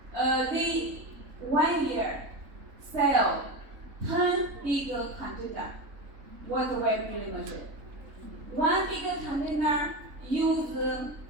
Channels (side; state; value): left; late; 3.6 ms